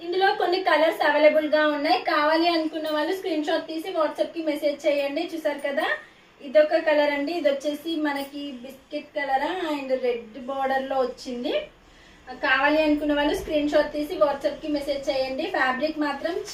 ఇందులో కొన్ని కలర్స్ అవైలబుల్ గా ఉన్నాయి. కావాలి అనుకున్న వాళ్ళు స్క్రీన్ షాట్ తీసి వాట్సాప్ కి మెసేజ్ చేయండి. చూసారు కదా, ఇదొక కలర్ అండి. ఇది వచ్చేసి మనకి biscuit colour and red border లో వచ్చింది. కావాలి అనుకున్న వాళ్ళు స్క్రీన్ షాట్ తీసి వాట్సాప్ కి మెసేజ్ చేయండి. ఫ్యాబ్రిక్ మాత్రం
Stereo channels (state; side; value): identical; both; correlation 1.00